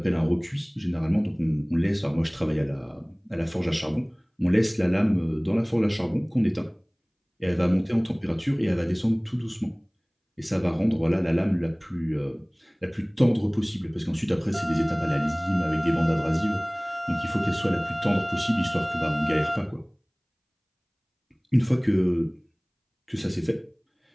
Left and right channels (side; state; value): both; identical; correlation 1.00